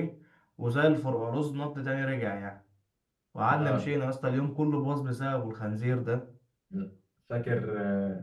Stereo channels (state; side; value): identical; both; correlation 1.00